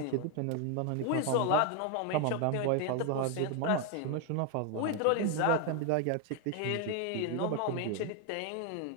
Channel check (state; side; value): different; both; correlation 0.01